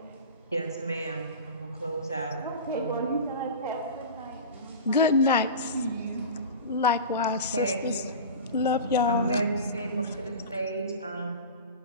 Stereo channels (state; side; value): inverted; both; correlation -0.31